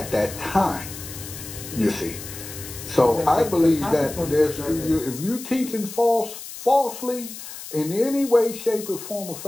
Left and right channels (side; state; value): left; noise; hiss, 12 dB below the sound